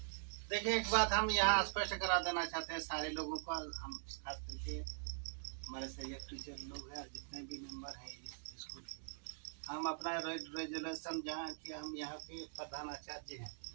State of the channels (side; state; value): left; silent; digital silence